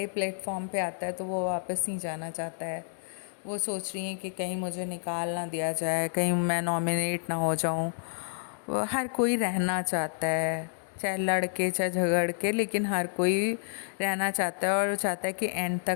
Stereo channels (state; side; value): silent; right; digital silence